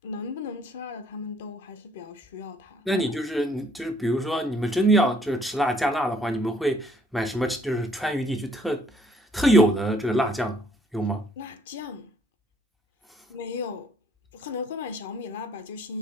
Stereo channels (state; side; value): normal; both; correlation 0.64